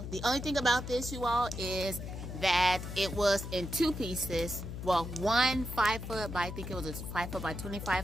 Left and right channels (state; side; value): noise; left; hum, 7 dB below the sound